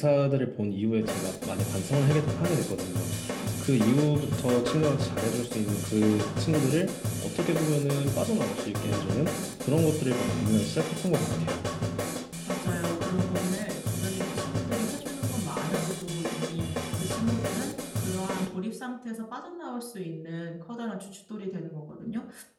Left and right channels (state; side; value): identical; both; correlation 1.00